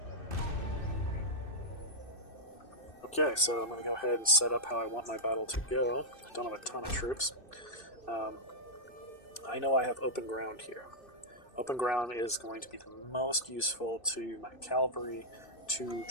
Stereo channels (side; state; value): right; late; 2.6 ms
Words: Okay, so I'm going to go ahead and set up how I want my battle to go. I don't have a ton of troops. I know I have open ground here. Open ground is going to be the most useful to my cavalry to